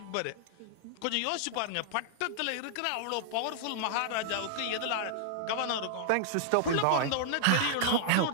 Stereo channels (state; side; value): different; both; correlation -0.01